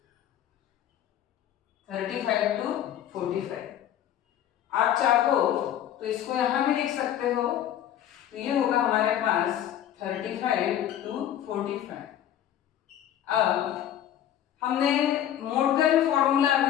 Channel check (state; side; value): quieter; right; 11.0 dB